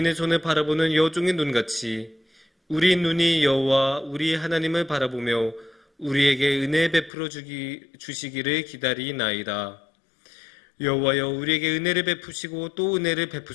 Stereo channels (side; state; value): right; drops out; at 7.1 s